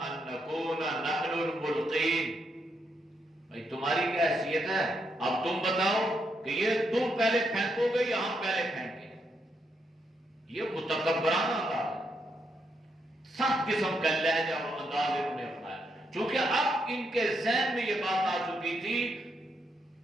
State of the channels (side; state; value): both; normal; correlation 0.79